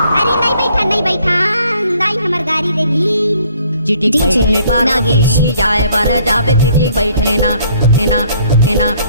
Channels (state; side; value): inverted; both; correlation -0.62